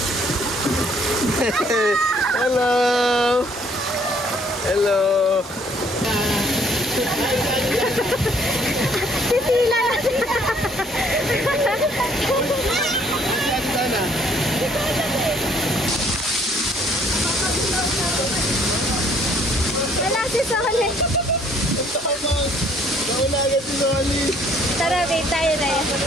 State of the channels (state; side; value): normal; both; correlation 0.62